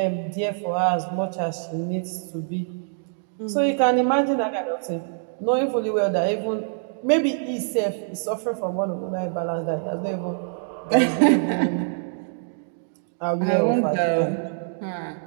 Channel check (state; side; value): silent; left; digital silence